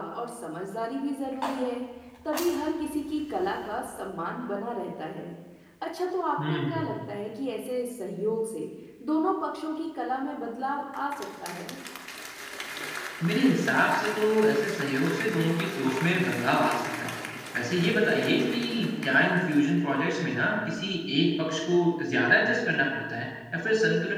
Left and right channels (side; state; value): both; identical; correlation 1.00